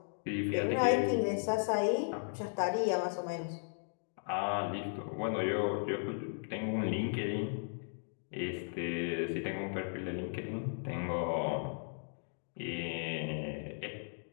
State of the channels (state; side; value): silent; right; digital silence